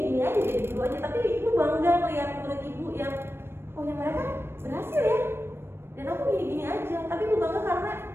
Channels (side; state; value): left; late; 0.12 ms